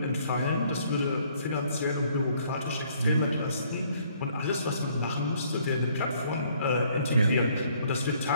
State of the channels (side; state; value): both; inverted; correlation -0.64